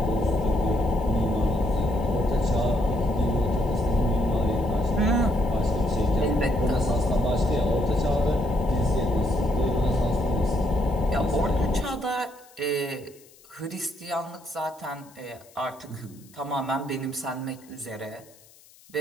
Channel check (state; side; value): noise; left; hiss, 26 dB below the sound